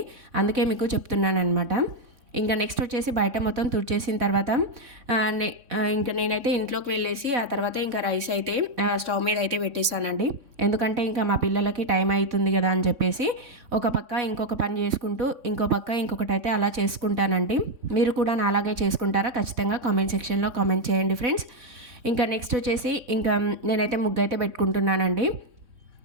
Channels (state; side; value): late; left; 3.6 ms